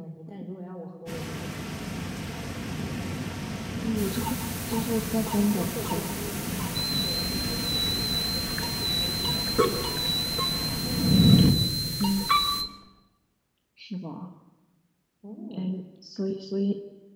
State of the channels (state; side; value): identical; both; correlation 1.00